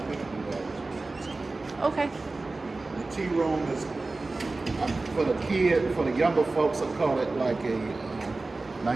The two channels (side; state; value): left; quieter; 3.4 dB